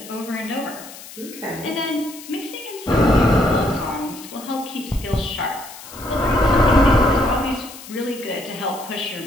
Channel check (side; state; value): left; noise; hiss, 16 dB below the sound